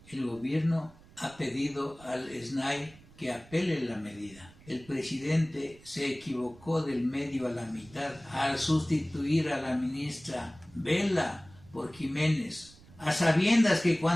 el gobierno ha pedido al SNAI que apele la medida. El presidente se equivocó del medio a la mitad al sustituir a la ministra Vela por Jiménez, a sabiendas que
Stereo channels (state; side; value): noise; right; rumble, 24 dB below the sound